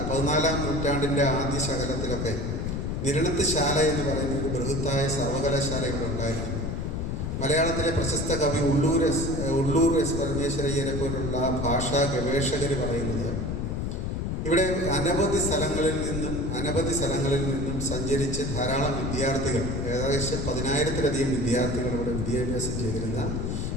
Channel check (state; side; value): noise; left; rumble, 2 dB below the sound